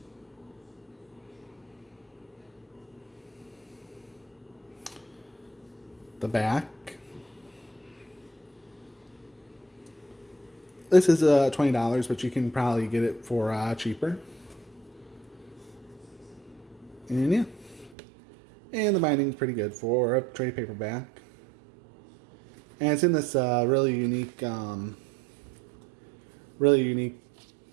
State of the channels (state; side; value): drops out; left; at 17.9 s